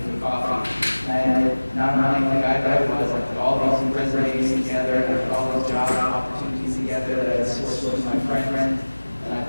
for coffee. And I had, not unlike the guy that I was, I put all these resumes together, and I put all these job opportunities together that I had sourced through my friends. And I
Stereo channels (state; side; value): inverted; both; correlation -1.00